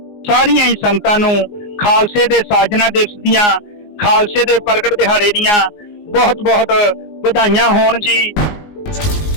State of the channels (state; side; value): late; right; 19 ms